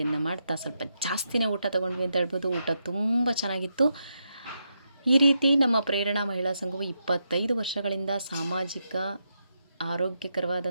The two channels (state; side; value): inverted; both; correlation -0.83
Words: ಮಾಡ್ತಾ ಸ್ವಲ್ಪ ಜಾಸ್ತಿನೇ ಊಟ ತೊಗೊಂಡ್ವಿ ಅಂತ ಹೇಳ್ಬೋದು. ಊಟ ತುಂಬ ಚೆನ್ನಾಗಿತ್ತು. ಈ ರೀತಿ ನಮ್ಮ ಪ್ರೇರಣಾ ಮಹಿಳಾ ಸಂಘವು 25 ವರ್ಷಗಳಿಂದ ಸಾಮಾಜಿಕ,